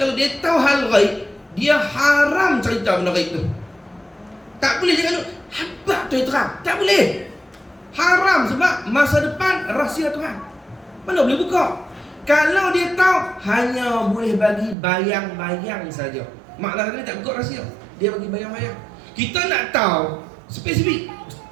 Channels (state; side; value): drops out; left; at 14.8 s